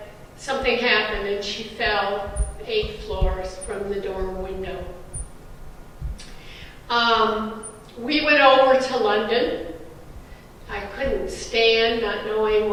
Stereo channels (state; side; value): identical; both; correlation 1.00